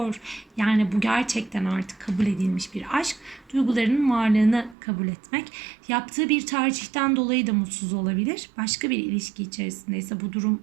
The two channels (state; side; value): drops out; left; at 4.8 s